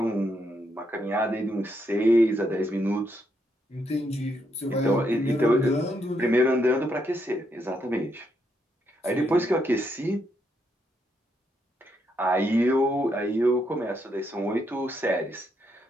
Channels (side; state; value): both; normal; correlation 0.78